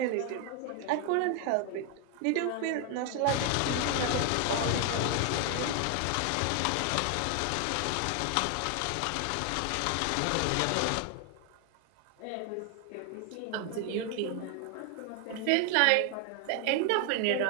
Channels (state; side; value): different; both; correlation 0.01